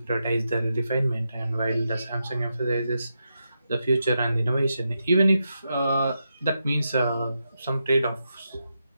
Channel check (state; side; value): inverted; both; correlation -0.86